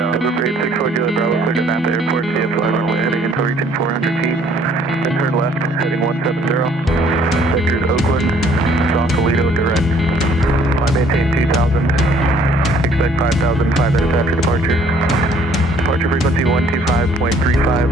864 Juliet Bravo, clear to Napa Airport, via fly runway heading until reaching 400 feet. Then turn left, heading 170. Sectors Oakland, Sausalito, direct. Fly maintain 2000. Expect 5,000 5 minutes after departure. Departure frequency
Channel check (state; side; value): normal; both; correlation 0.60